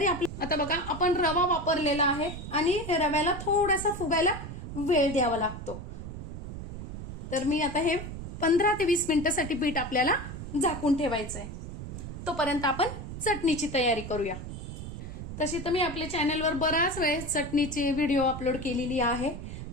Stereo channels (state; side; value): noise; right; rumble, 9 dB below the sound